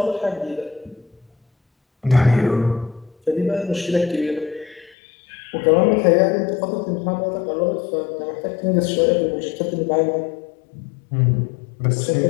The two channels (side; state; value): right; drops out; at 5.0 s